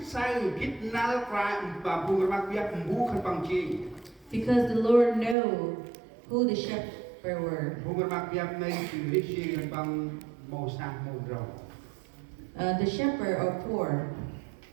sai kit nal prime ba bukan makiat bu kan bang ching. Because the Lord know who the shepherd were. Bukan makiat nei ching ri ching kan bang mau sang mau rau. The shepherd are poor.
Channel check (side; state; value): left; drops out; at 5.4 s